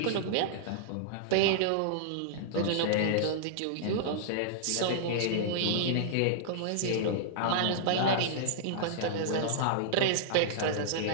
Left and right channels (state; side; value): different; both; correlation -0.02